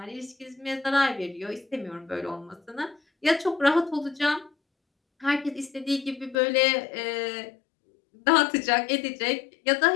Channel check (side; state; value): right; drops out; at 6.4 s